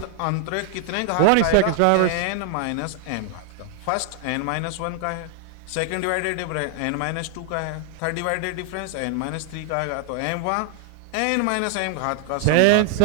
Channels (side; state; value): both; different; correlation 0.00